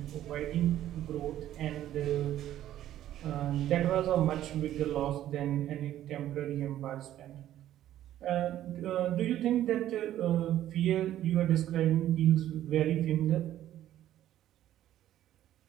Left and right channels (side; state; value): left; quieter; 12.5 dB